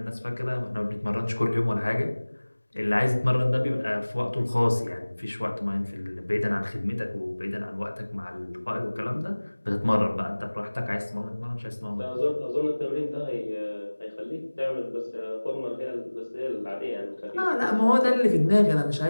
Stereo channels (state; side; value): inverted; both; correlation -1.00